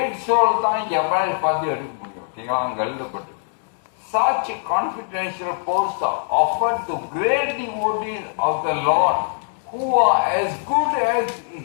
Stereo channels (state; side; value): silent; right; 64 dB below the other